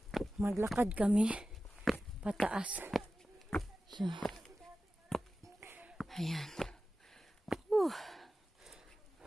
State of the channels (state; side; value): normal; both; correlation 0.94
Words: Maglakad kami pataas. So, ayan.